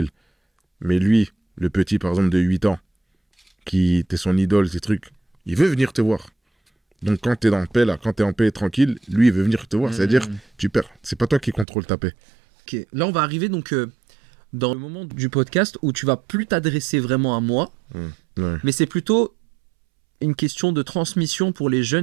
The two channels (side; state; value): left; drops out; at 11.7 s